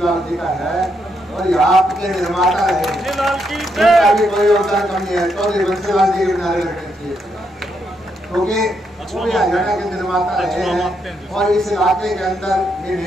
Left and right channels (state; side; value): normal; both; correlation 0.79